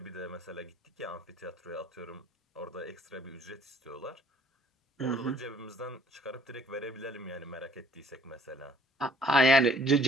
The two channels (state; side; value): normal; both; correlation 0.58